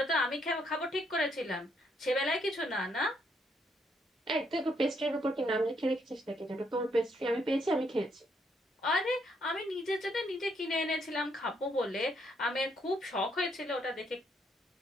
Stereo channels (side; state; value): both; normal; correlation 0.73